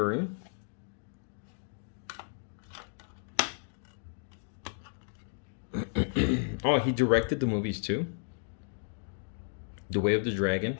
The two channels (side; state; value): right; silent; digital silence